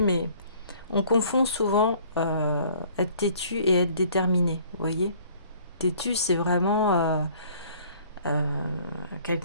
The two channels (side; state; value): both; inverted; correlation -0.55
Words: mais on confond souvent être têtu et être déterminé. Vous voyez, têtu, c'est vraiment